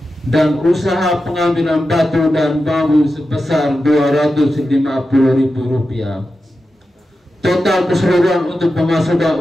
dan usaha pengambilan batu dan bambu sebesar Rp250.000. Total keseluruhan untuk pemasukan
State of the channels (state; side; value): normal; both; correlation 0.91